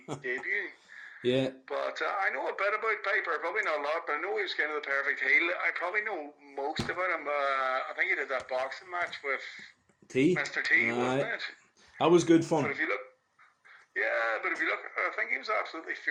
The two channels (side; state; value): both; identical; correlation 1.00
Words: debut. Yeah. But I know a bit about Piper, probably not a lot, but I know he was kind of the perfect heel. I probably know most about him. I think he did that boxing match with T. Mr. T, wasn't Aye. it? That was good But fun. if you look, yeah, but if you look, I think he was absolutely